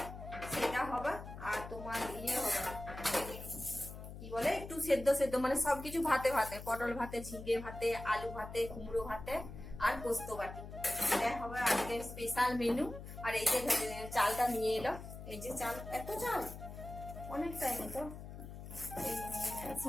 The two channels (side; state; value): left; noise; hum, 11 dB below the sound